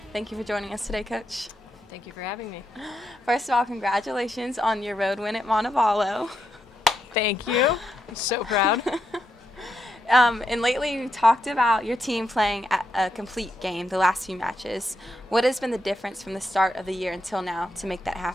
Thank you for joining us today, Coach. Thank you for having me. First of all, congratulations on your road win at Montevallo. Thank you. I'm so proud. And lately you talked about your team playing a complete game the last few matches. What has been the difference from the start of the year until now to make that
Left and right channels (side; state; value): both; normal; correlation 0.82